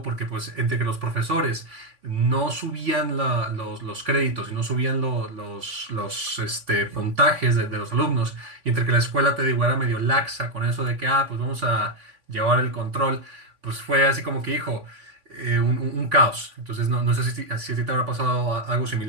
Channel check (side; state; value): left; late; 3.5 ms